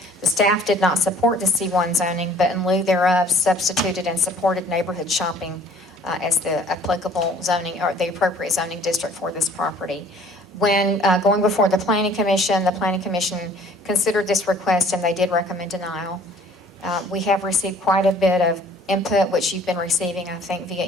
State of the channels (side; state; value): both; normal; correlation 0.55